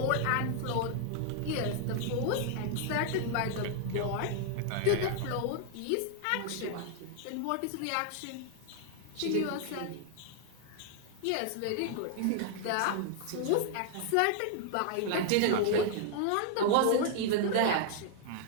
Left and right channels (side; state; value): both; different; correlation -0.01